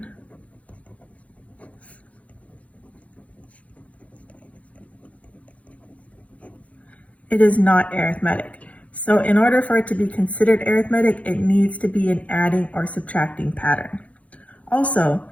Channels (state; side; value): late; right; 0.066 ms